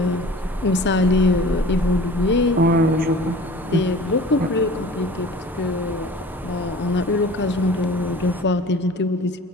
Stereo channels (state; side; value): normal; both; correlation 0.43